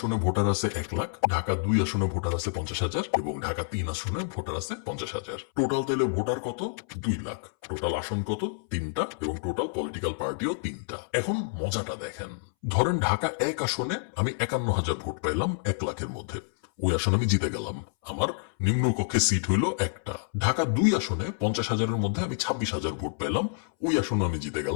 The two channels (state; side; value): silent; right; 59 dB below the other